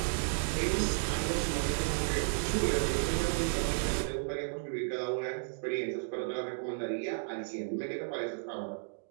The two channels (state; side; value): silent; left; digital silence